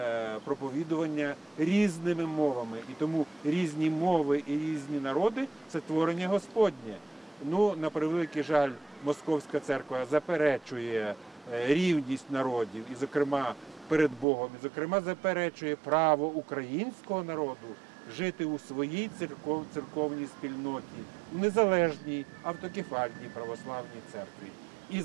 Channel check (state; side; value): drops out; left; at 14.2 s